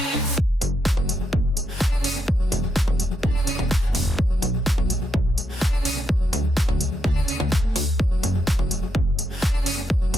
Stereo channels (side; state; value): both; normal; correlation 0.80